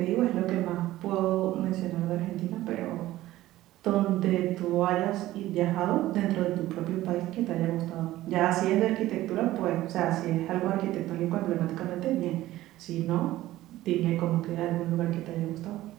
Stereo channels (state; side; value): quieter; left; 15.7 dB